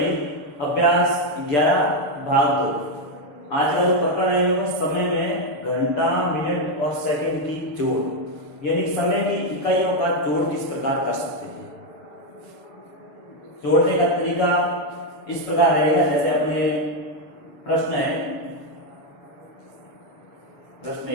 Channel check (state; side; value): late; right; 6.9 ms